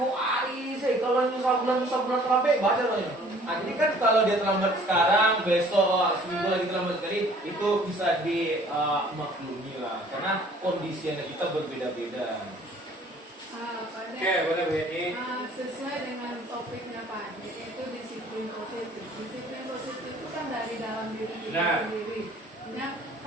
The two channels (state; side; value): normal; both; correlation 0.54